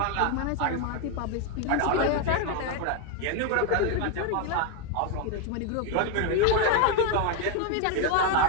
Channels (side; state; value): both; different; correlation 0.01